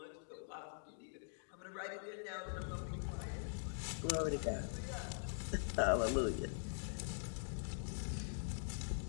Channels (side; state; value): right; silent; digital silence